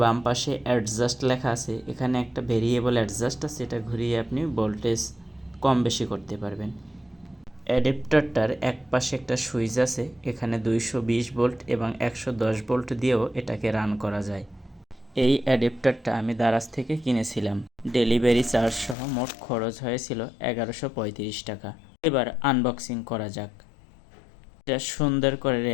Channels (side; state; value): right; drops out; at 18.9 s